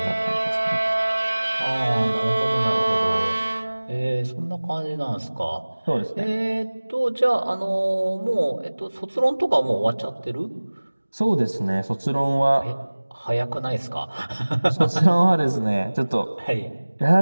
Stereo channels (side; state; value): both; inverted; correlation -1.00